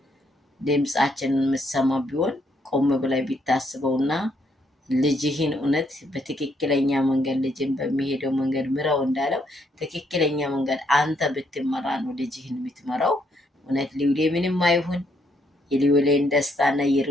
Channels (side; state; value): both; normal; correlation 0.73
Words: ድምፃችንን የምትሰማ ቢሆን ቆም ብላይ ቢታስበውና ልጅህን እውነት በትክክለኛ መንገድ ልጅን በሚሄደው መንገድ ምረው እንዳለው ትክክለኛ መንገድ አንተ ብትመራ ነው ልጅህን የምትመራው። እውነት ሊውሌ ምንም አይሁን የሊውሌን ደስታና